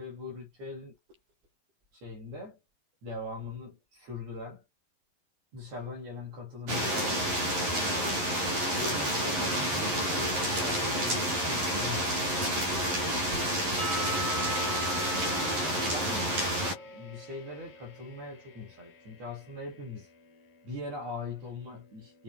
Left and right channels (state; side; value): late; left; 11 ms